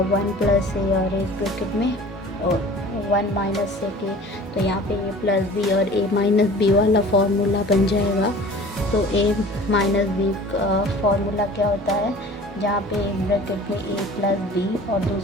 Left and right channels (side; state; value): both; normal; correlation 0.44